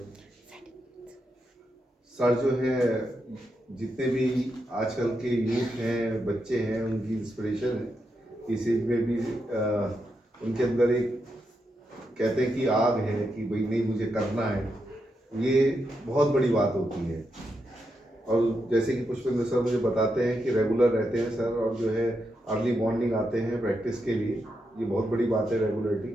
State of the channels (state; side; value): normal; both; correlation 0.84